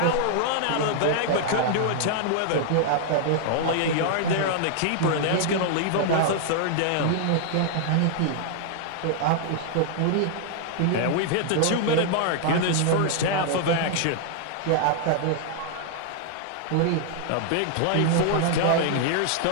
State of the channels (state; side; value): different; both; correlation 0.00